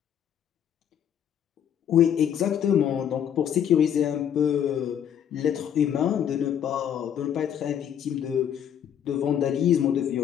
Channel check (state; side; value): quieter; right; 9.2 dB